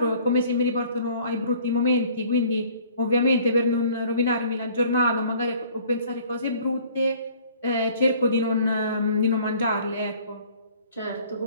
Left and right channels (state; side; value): inverted; both; correlation -0.53